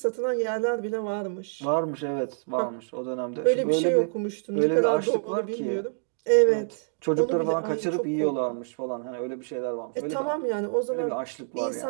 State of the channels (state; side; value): silent; left; digital silence